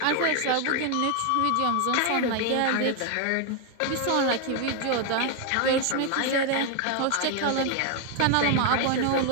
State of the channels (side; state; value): both; different; correlation 0.00